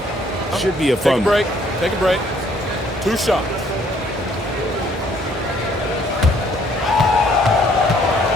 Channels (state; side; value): normal; both; correlation 0.63